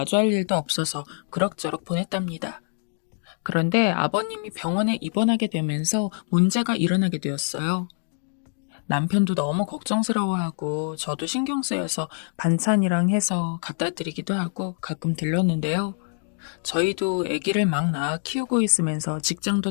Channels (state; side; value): silent; right; 61 dB below the other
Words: 일도 없어서 그럭저럭 보냈답니다. 그런데 아버님이 병원에 입원하게 되면서 문제가 일어나게 되었어요. 남편도 너무 걱정스러워하고 저도 신경 쓰여서 반찬이랑 해서 갖다 드리기도 하고 가끔 들렀는데요. 저희도 아기를 막 낳아 키우고 있으면서